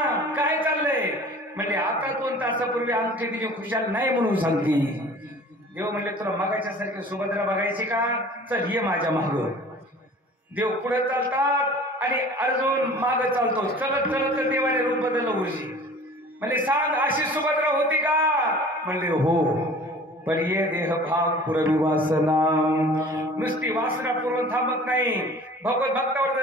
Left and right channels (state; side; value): normal; both; correlation 0.45